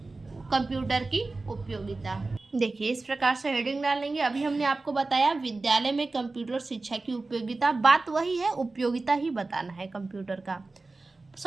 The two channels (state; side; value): quieter; left; 3.5 dB